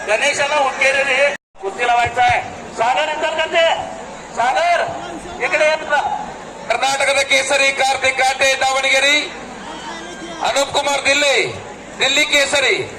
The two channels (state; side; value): identical; both; correlation 1.00